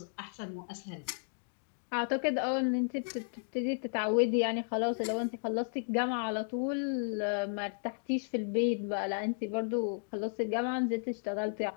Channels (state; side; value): silent; right; digital silence